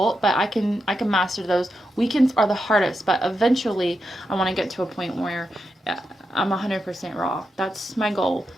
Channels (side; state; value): both; normal; correlation 0.86